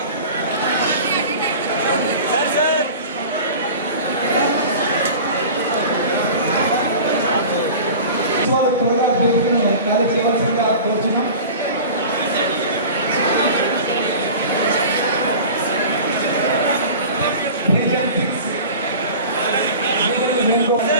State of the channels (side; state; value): both; inverted; correlation -0.37